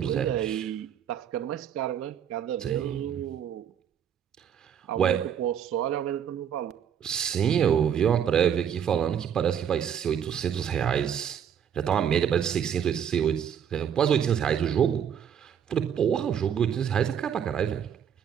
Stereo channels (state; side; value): quieter; left; 8.6 dB